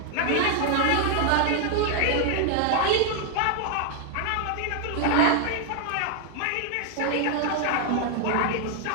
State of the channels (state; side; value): different; both; correlation 0.00